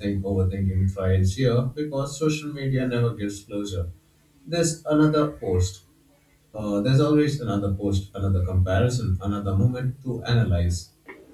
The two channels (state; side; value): identical; both; correlation 1.00